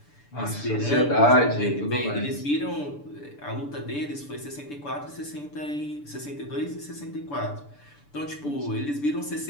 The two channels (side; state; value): right; late; 6.9 ms